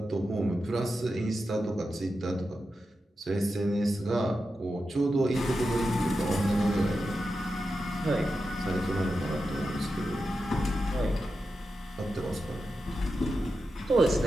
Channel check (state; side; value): normal; both; correlation 0.90